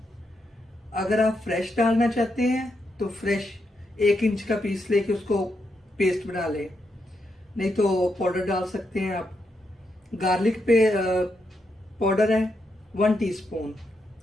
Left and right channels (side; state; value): both; normal; correlation 0.82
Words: अगर आप फ्रेश डालना चाहते हैं तो फ्रेश 1 इंच का पीस लेके उसको पेस्ट बना लें, नहीं तो पाउडर डाल सकते हैं आप। गार्लिक पे पाउडर है 1 टीस्पून,